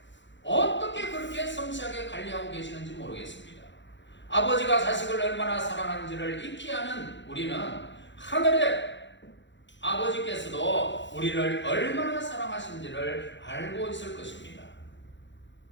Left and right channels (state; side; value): late; right; 0.53 ms